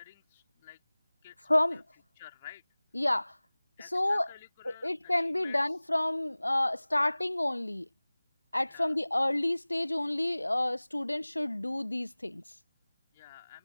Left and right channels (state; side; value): inverted; both; correlation -1.00